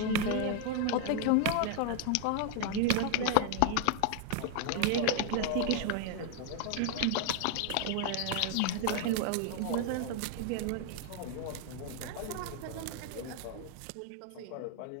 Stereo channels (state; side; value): different; both; correlation 0.00